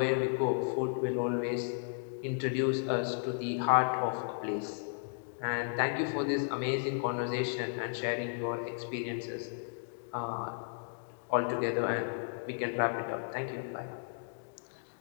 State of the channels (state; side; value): silent; right; digital silence